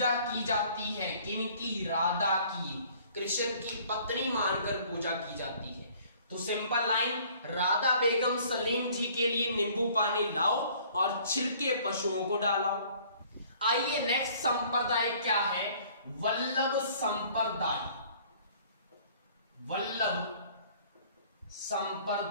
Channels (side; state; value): both; inverted; correlation -0.55